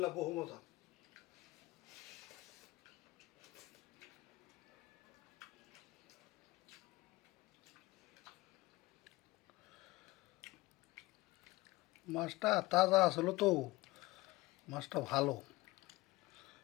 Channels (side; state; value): right; quieter; 20.6 dB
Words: বহু মজা। মাছটা তাজা আসলো তো, মাছটা ভালো,